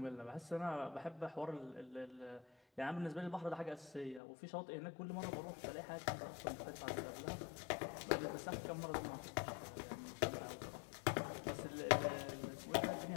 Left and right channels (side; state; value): right; drops out; at 4.2 s